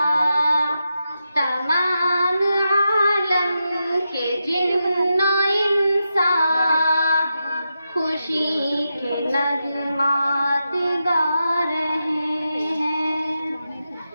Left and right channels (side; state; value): both; inverted; correlation -0.88